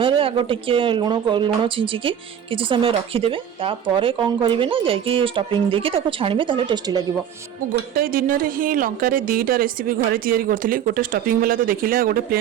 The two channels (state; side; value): quieter; left; 9.3 dB